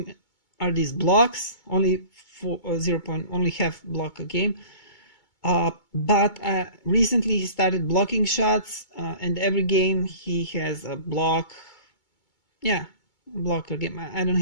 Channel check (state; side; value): late; right; 2.2 ms